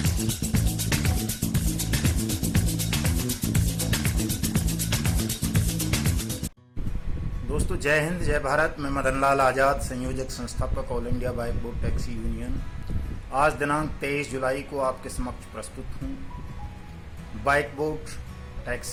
दोस्तों जय हिंद जय भारत। मैं मदन लाल आज़ाद, संयोजक संस्थापक all India bike board taxi union. आज दिनांक 23 जुलाई को आपके समक्ष प्रस्तुत हूँ। बाइक बोर्ड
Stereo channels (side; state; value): both; identical; correlation 1.00